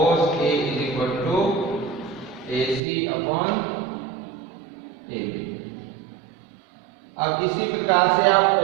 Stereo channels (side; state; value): left; drops out; at 2.8 s